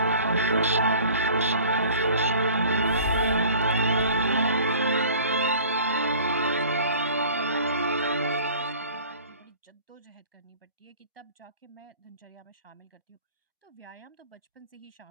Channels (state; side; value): inverted; both; correlation -0.47